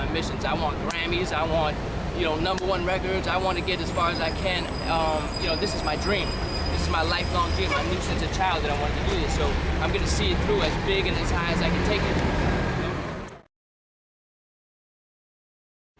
missions. I want Grammys, I want, you know, #1 records, I want to get as far as I can. You know, this is my dream. This is my lifelong dream. I knew since a child that I wanted to do this, so I'm going to see it through as big and as high as I can take it.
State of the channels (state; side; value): identical; both; correlation 1.00